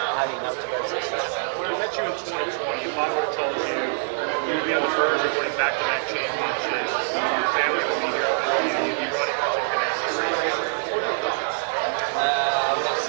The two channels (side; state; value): left; silent; digital silence